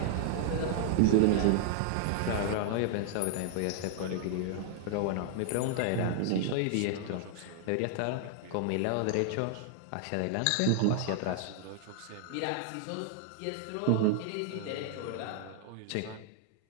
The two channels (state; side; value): different; both; correlation 0.00